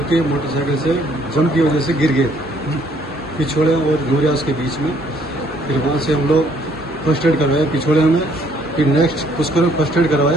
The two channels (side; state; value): both; normal; correlation 0.64